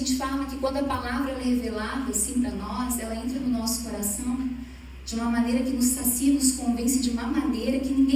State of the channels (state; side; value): identical; both; correlation 1.00